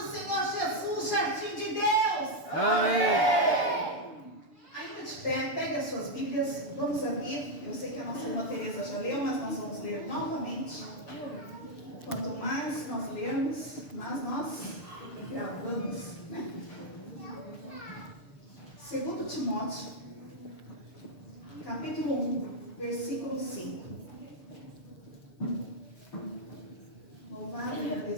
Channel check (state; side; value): late; right; 6.8 ms